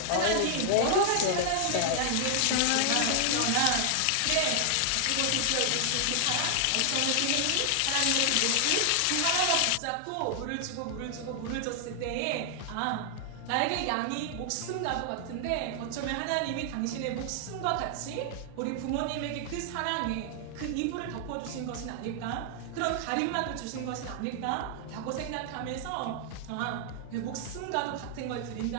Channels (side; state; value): both; different; correlation 0.00